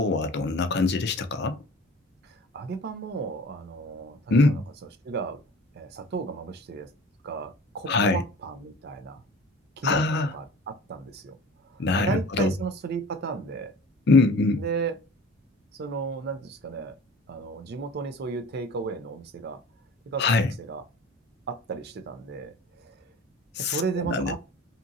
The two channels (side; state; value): both; normal; correlation 0.43